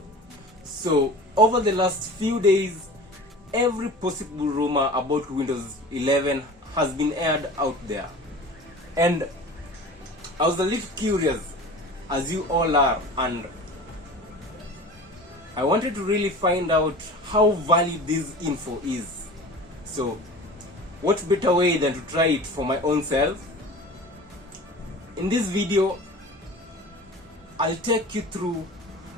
So, over the last few days, every possible rumor about Windows 11 has been aired out there. And I was a little curious, as you all are, and I wanted to really find out how valid this info is. So, what better way than to try it for my own self? In this video, I'll take you through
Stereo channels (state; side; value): normal; both; correlation 0.38